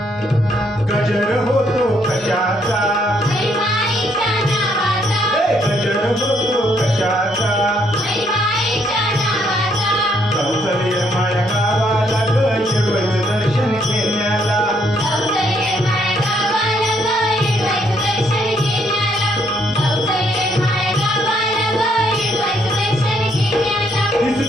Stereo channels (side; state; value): both; normal; correlation 0.71